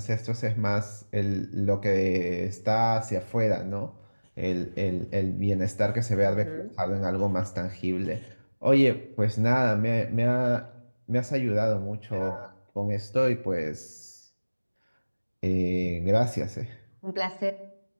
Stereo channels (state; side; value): inverted; both; correlation -1.00